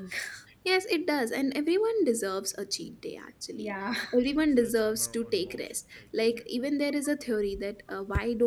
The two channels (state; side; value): identical; both; correlation 1.00